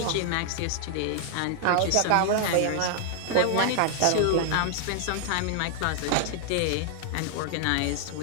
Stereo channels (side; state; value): both; different; correlation 0.00